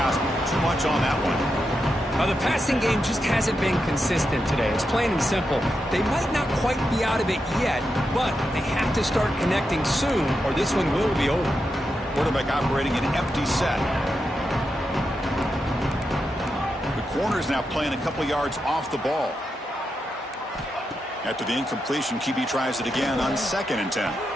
Too much on that one. The passing game just hasn't been consistent today. It's plain and simple. They might not quite be out of it yet, but they have to start connecting soon or this one will be over. Quarterback operating an empty set. The corner's now playing a couple yards off the ball. After the incompletion, QB tries it again on 2nd and 10.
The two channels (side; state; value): both; normal; correlation 0.86